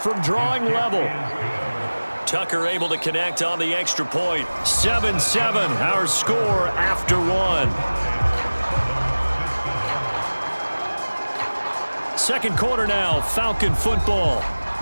drawing level. Tucker able to connect on the extra point. 7-7, our score after 1. 2nd quarter now, Falcon football.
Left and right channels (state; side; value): inverted; both; correlation -1.00